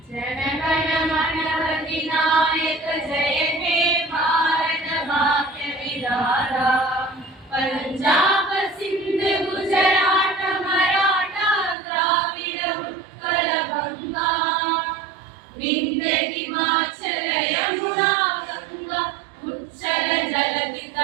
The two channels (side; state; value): left; drops out; at 11.8 s